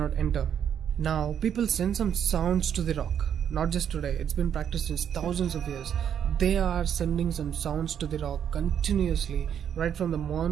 enter. Now people send some sounds to the rock. Not just today, it's been practiced since thousands of years. They are sending some sounds to the rock continuously, right from the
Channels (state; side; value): quieter; left; 8.8 dB